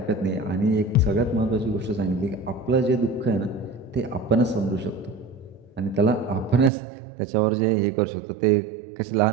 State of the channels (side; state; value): left; drops out; at 6.7 s